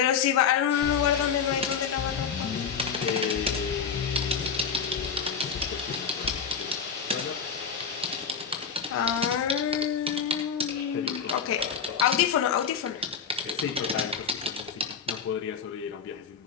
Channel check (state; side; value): quieter; right; 6.7 dB